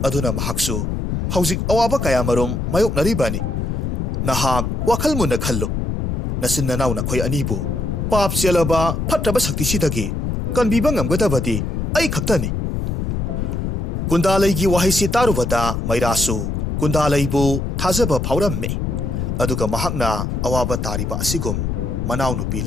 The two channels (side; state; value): left; noise; rumble, 1 dB below the sound